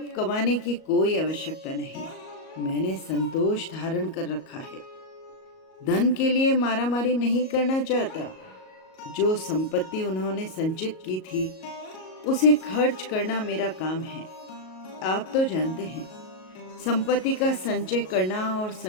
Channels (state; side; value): late; right; 38 ms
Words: कमाने की कोई आवश्यकता नहीं। मैंने संतोष धारण कर रखा है। धन के लिए मारामारी नहीं करना चाहता। जो संपत्ति उन्होंने संचित की थी उसे खर्च करना मेरा काम है। आप तो जानते हैं, संपत्ति का संचय करना और